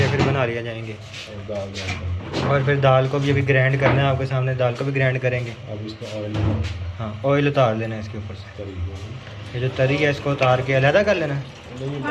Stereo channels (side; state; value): both; identical; correlation 1.00